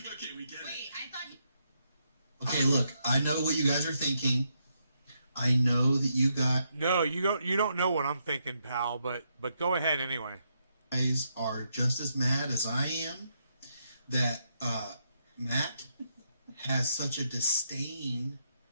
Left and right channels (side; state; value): both; inverted; correlation -0.79